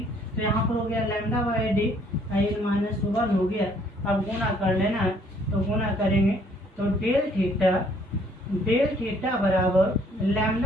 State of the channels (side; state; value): both; normal; correlation 0.63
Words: तो यहाँ पर हो गया लैम्डा बाई डी एन -1 हो गया। अब गुना कर लेना है, तो गुना करेंगे तो डेल थीटा बराबर